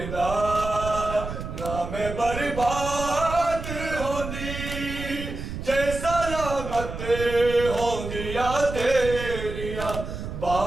ना मैं बर्बाद होंदी जे सलामत होंदिया तेरिया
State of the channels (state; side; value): noise; right; rumble, 7 dB below the sound